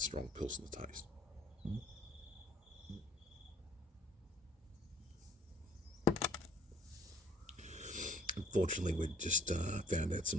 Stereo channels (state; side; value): normal; both; correlation 0.59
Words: Pilsner taste. Unfortunately, we just found out